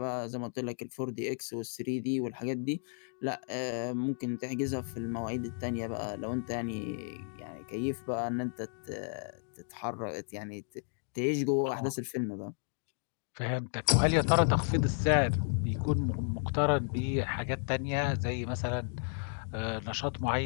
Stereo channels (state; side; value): silent; right; 56 dB below the other